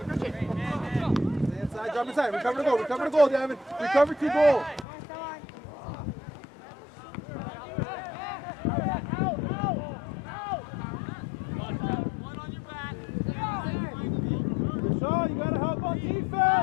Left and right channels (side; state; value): right; drops out; at 4.9 s